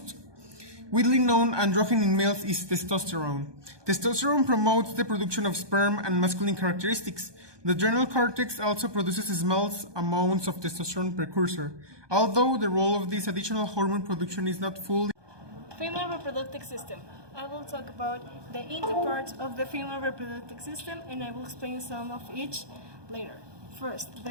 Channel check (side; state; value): left; late; 1.2 ms